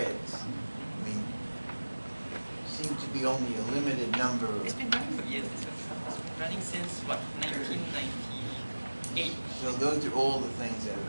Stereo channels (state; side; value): inverted; both; correlation -1.00